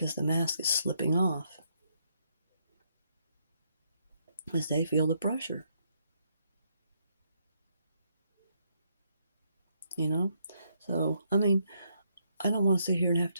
the mask is slipping off as they feel the pressure. So, I mean, I don't want to sit here and have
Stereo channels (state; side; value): inverted; both; correlation -0.75